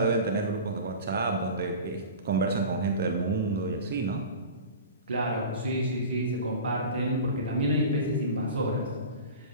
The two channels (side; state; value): both; inverted; correlation -0.35